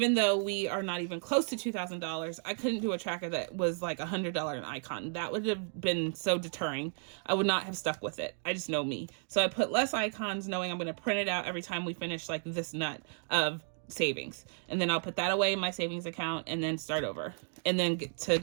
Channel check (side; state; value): left; silent; 56 dB below the other